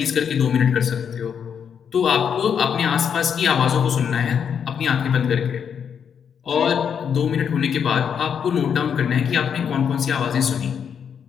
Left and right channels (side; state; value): right; quieter; 7.5 dB